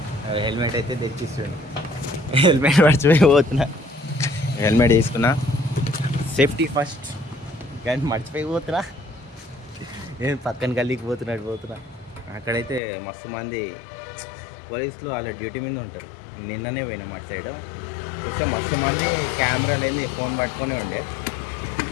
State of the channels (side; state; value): right; drops out; at 12.8 s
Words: హెల్మెట్ అయితే తెచ్చిస్తుండు. హెల్మెట్ మర్చిపోయి పోతున్నా. హెల్మెట్ తీసుకున్నా, సేఫ్టీ ఫస్ట్, కానీ మర్చిపోయి పోతున్నా. నేను పక్కన గల్లీకి పోతున్నా. అక్కడైతే మస్తు మంది పోలీసులు వాళ్ళ డ్యూటీ మీద ఉంటారు. నిన్ననే పోయినాం అటు సైడ్ చూస్తే మస్తు మంది కెమెరాలు ఏంది ఫోన్ పట్టుకొనే ఉండే.